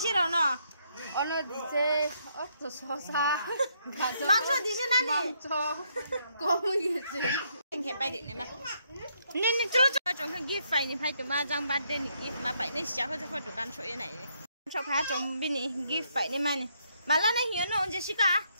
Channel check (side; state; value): both; inverted; correlation -0.74